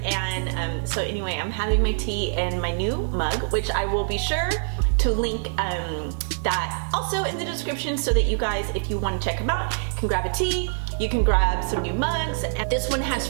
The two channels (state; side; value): silent; left; digital silence